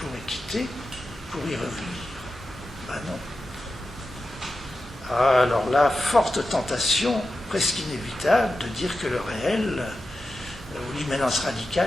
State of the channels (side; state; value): both; normal; correlation 0.92